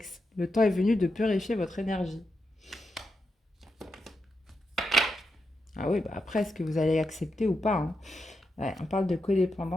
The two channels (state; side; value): normal; both; correlation 0.86